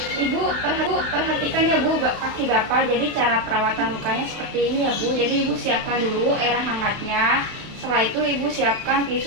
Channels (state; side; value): late; left; 31 ms